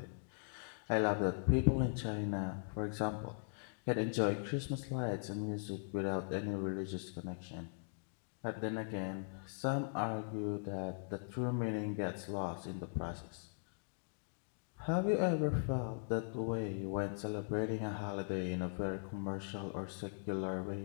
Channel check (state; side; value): silent; right; digital silence